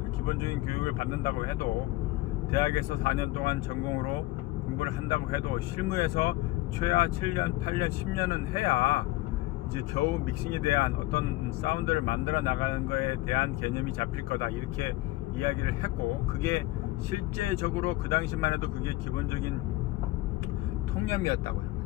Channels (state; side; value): quieter; right; 18.5 dB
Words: 기본적인 교육을 받는다고 해도 대학에서 4년 동안 전공으로 공부를 한다고 해도 실무에서 최하 7년, 8년, 10년은 해야 이제 겨우 믹싱에 대한 어떤 사운드를 만들어 나가는 거에 대한 개념이 잡힐 거다 이렇게 이야기를 했고, 그게 실제적으로 그 당시만 해도 그게 기본적인 통념이었다고요.